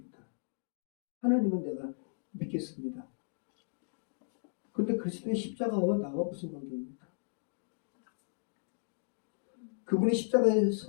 하나님은 내가 믿겠습니다. 그런데 그리스도의 십자가와 나와 무슨 관계입니까? 그분이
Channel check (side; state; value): right; silent; digital silence